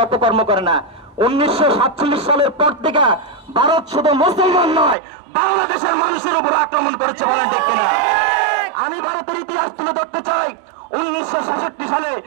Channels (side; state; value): left; drops out; at 5.0 s